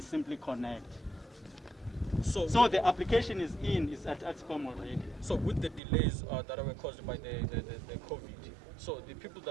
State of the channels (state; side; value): drops out; left; at 5.8 s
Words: simply connect. So the application is at ESCOM already. So with the delays that were caused by the COVID, so the people